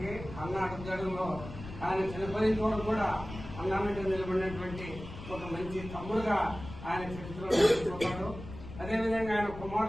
అన్న అడుగుజాడలో ఆయన చనిపోయిన వరకు కూడా అన్న మీద నిలబడినటువంటి ఒక మంచి తమ్ముడుగా ఆయన చరిత్రలో నిలిచిపోతాడు. అదేవిధంగా ఆయన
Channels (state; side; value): noise; left; rumble, 12 dB below the sound